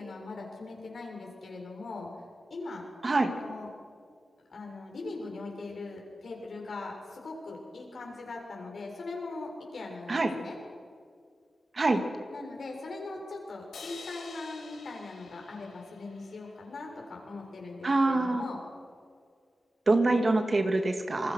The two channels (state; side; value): normal; both; correlation 0.94